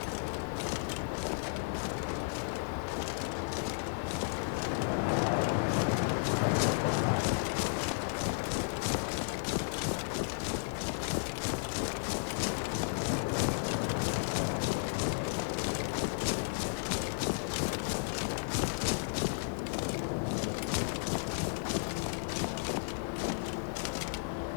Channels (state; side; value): silent; right; digital silence